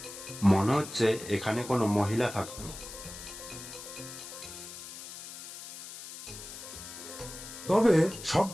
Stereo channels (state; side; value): noise; left; hiss, 12 dB below the sound